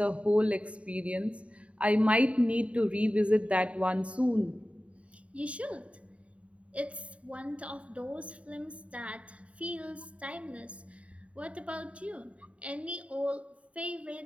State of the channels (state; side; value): late; left; 0.064 ms